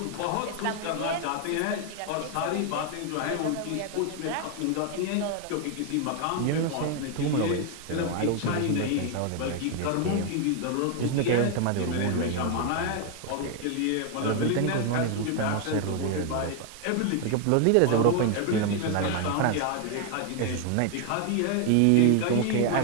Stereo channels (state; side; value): different; both; correlation 0.00